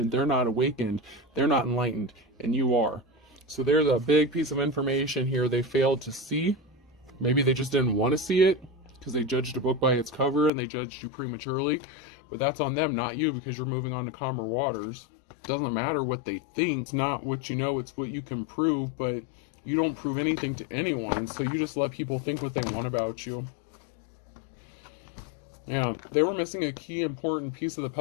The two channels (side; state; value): right; drops out; at 10.5 s